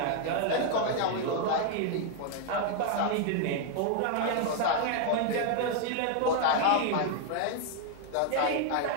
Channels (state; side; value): different; both; correlation 0.00